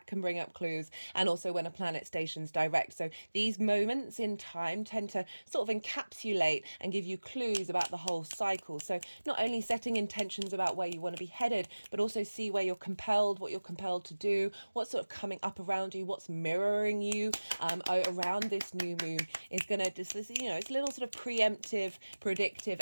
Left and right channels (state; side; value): inverted; both; correlation -1.00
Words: can bring up clues. And also when a planet stations direct. So these moments in time tend to sort of encapsulate and give you clues about the whole cycle. So not only setting intentions about where you want to be headed, but also see where you're compelled, what you're compelled to do, what's sort of coming up around you, what's mirroring you around this new moon is going to just, you know, it's a little sort of preemptive, predictive